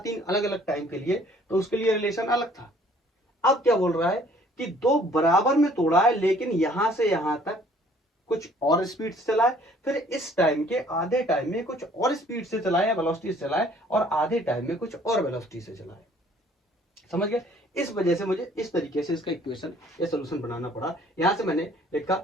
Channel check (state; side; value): normal; both; correlation 0.58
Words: अलग अलग टाइम के लिए, तो उसके लिए रिलेशन अलग था। अब क्या बोल रहा है कि दो बराबर में तोड़ा है लेकिन यहां से यहां तक कुछ और स्पीड से चला है, फिर इस टाइम के आधे टाइम में कुछ और स्पीड से चला है, वेलोसिटी से चला है, और आधे टाइम में कुछ और वेलोसिटी से चला है। समझ गए? इस वजह से मुझे इस तरीके से इसका इक्वेशन या सोल्यूशन बनाना पड़ा। यहां से मैंने लिखा